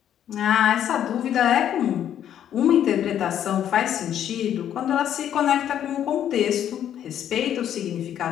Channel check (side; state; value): right; quieter; 10.2 dB